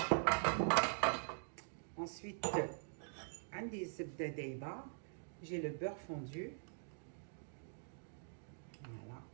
Ensuite, عندي الزبدة دايبة. J'ai le beurre fondu. Voilà.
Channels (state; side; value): silent; left; digital silence